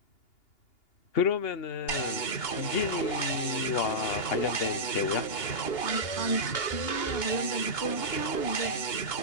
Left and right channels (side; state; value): right; late; 2.8 ms